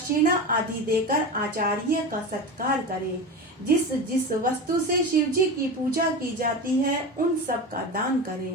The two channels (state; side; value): normal; both; correlation 0.26